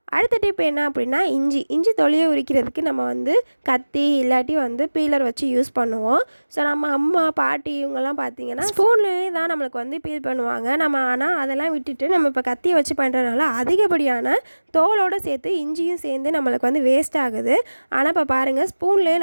அடுத்த டிப் என்ன அப்படின்னா இஞ்சி தொலியை உரிக்கிறதுக்கு நம்ம வந்து கத்தி இல்லாட்டி வந்து பீலர் வச்சு யூஸ் பண்ணுவோம். ஸோ நம்ம அம்மா பாட்டி இவங்கெல்லாம் பார்த்திங்கன்னா ஸ்பூன்லேயே தான் நம்மளுக்கு வந்து பீல் பண்ணுவாங்க. நம்ம ஆனால் அதெல்லாம் விட்டுட்டு நம்ம இப்போ கத்தியை வச்சு பண்ணுறதுனால அதிகப்படியான தோலோடு சேர்த்து இஞ்சியும் சேர்ந்து நம்மளுக்கு வந்து வேஸ்ட் ஆகுது. ஆனால் இப்போ பாருங்கள்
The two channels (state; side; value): inverted; both; correlation -1.00